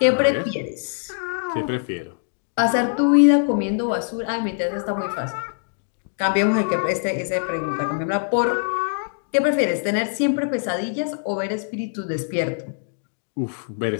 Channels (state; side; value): silent; right; digital silence